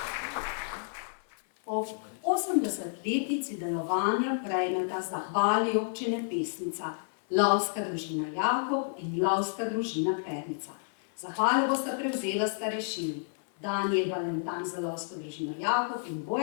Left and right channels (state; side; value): silent; right; 58 dB below the other